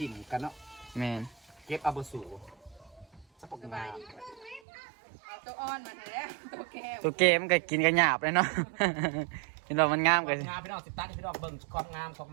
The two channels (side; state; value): left; drops out; at 4.6 s